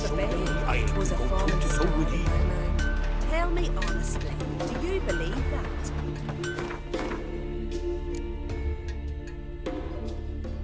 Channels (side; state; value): both; identical; correlation 1.00